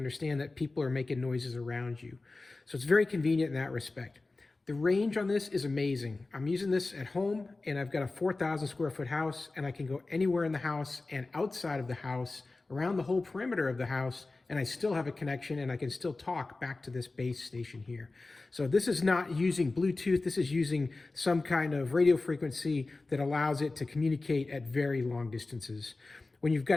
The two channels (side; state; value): right; quieter; 3.4 dB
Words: that people are making noises around you. So it's very convenient in that respect. The range on this is amazing. I'm using this at home and I've got a 4,000 square foot house and I can go anywhere in the house and outside of the house, around the whole perimeter of the house, and I still have a connection and I can still talk back to this base station here. So this is not using Bluetooth, this is using some kind of radio frequency that allows it to communicate at very long distances. When you've